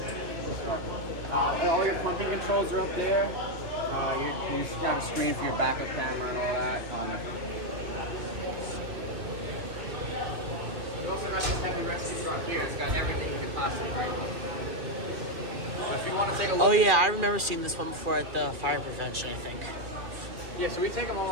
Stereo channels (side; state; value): left; late; 2.4 ms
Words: All your pumping controls are up there. You've got a screen for your backup camera and all that. We also got this heavy rescue truck here. It's got everything in the classroom. If you want to take a look. Oh yeah, I remember seeing this one before at the fire prevention, I think. Yeah, so we take them